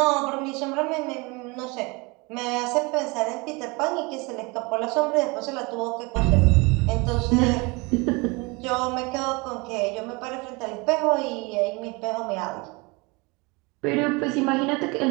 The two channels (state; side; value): quieter; left; 26.9 dB